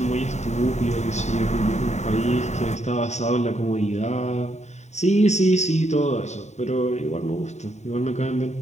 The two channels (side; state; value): right; late; 0.33 ms